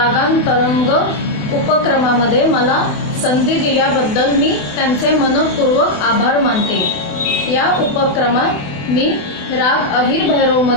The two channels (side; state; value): right; late; 28 ms